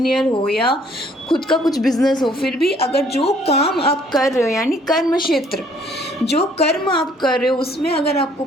हो या खुद का कुछ बिजनेस हो, फिर भी अगर जो काम आप कर रहे हो यानी कर्म क्षेत्र, जो कर्म आप कर रहे हो उसमें अगर आपको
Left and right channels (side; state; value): both; normal; correlation 0.62